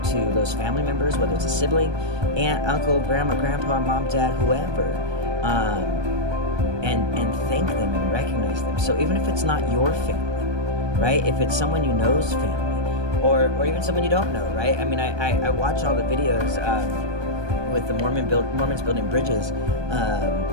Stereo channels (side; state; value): left; late; 1.2 ms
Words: to those family members, whether it's a sibling, aunt, uncle, grandma, grandpa, mom, dad, whoever, and thank them and recognize them. So even if it's not your family, right? If it's someone you know's family, or even someone you don't know, right? I mean, I watch all the videos with the Mormons building bridges